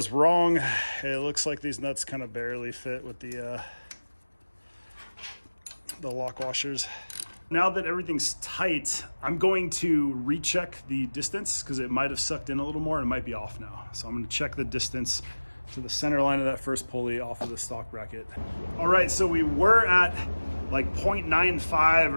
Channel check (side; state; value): both; inverted; correlation -1.00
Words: wrong. It looks like these nuts kind of barely fit with the lock washers. Now that everything's tight, I'm going to recheck the distance because it might have sucked in a little more and it might be off now. So I'm going to check the distance to the center line of that first pulley off of the stock bracket. All right, so we were at like